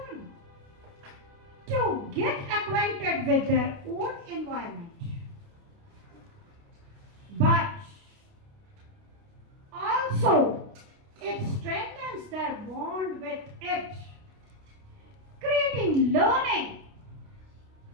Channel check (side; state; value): left; late; 29 ms